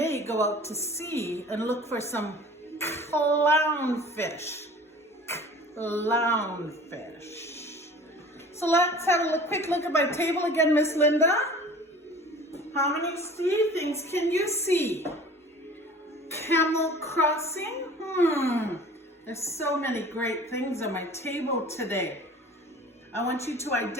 go out to sea and look for some clownfish. Clownfish. So let's have a quick look at my table again, Miss Linda. How many sea things can you see? Camel crossing? There's so many great things on my table today. I want you to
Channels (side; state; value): both; normal; correlation 0.44